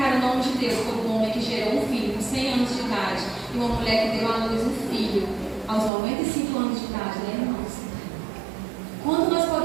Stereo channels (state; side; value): drops out; left; at 5.9 s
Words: o nome de Deus por um homem que gerou um filho com 100 anos de idade e uma mulher que deu à luz um filho aos 95 anos de idade, né, irmãos? Quando nós